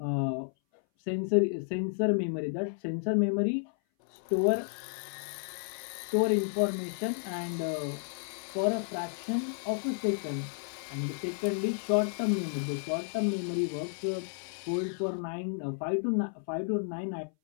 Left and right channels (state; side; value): silent; right; 56 dB below the other